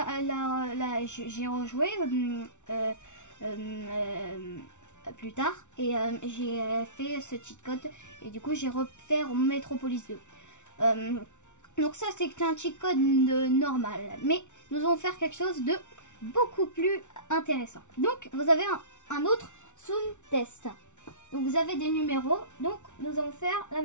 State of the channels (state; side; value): late; right; 0.84 ms